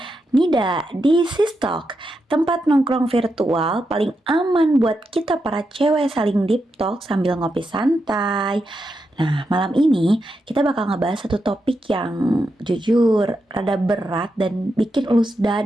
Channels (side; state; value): both; normal; correlation 0.85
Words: Nida, di Sistok, tempat nongkrong virtual paling aman buat kita para cewek saling deep talk sambil ngopi santai. Nah, malam ini kita bakal ngebahas satu topik yang jujur rada berat dan bikin ulus